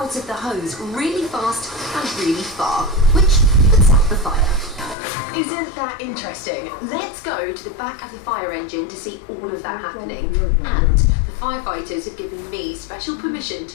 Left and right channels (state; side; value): drops out; right; at 5.0 s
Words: of the hose really fast and really far, which puts out the fire. Isn't that interesting? Let's go to the back of the fire engine to see all of that happening. And the firefighters have given me special permission